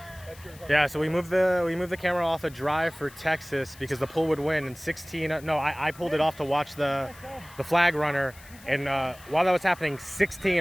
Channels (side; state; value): left; noise; hiss, 22 dB below the sound